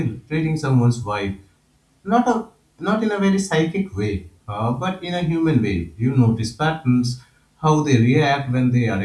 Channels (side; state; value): both; identical; correlation 1.00